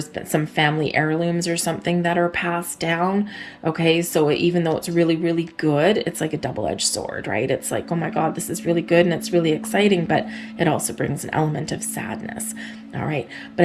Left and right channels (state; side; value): identical; both; correlation 1.00